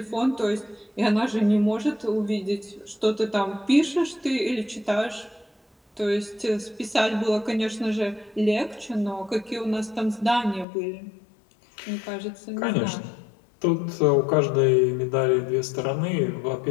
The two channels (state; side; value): drops out; right; at 10.7 s